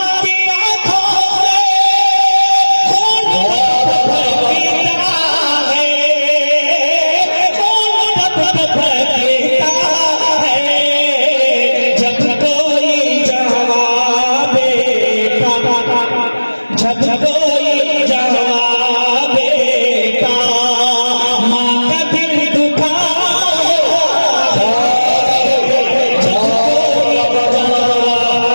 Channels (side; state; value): both; inverted; correlation -1.00